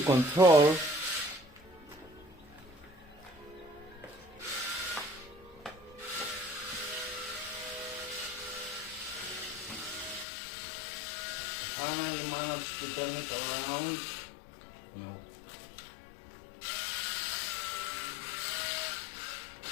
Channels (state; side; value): drops out; right; at 10.2 s